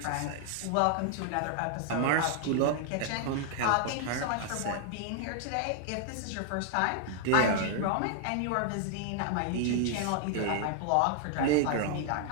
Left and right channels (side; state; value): both; different; correlation 0.00